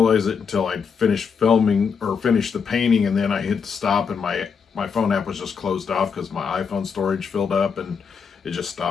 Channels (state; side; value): quieter; right; 6.2 dB